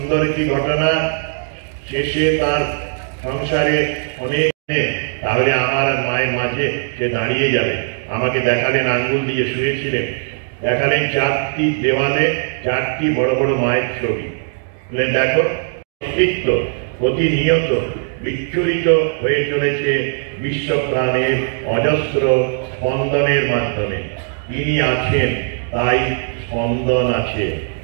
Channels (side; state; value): left; silent; 63 dB below the other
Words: একটি ঘটনা। শেষে তার সংসারে অনেক, তাহলে আমার আর মায়ের মাঝে সে দাঁড়িয়ে যাবে। আমাকে দেখালেন, আঙ্গুল দিয়ে শুয়েছিলেন, দেখালেন 4টি দেওয়ালে 4টি বড় বড় মায়ের ছবি। বললেন দেখো, অস্তিত্ব প্রতিনিয়ত বিচ্ছুরিত হয়ে চলেছে বিশ্ব প্রাণের অজস্র স্পন্দনের মাধ্যমে। তিনি আছেন, তাই স্পন্দন আছে।